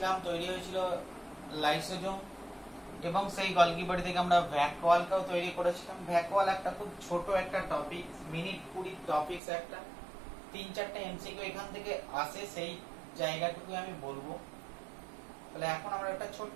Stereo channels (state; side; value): drops out; left; at 9.4 s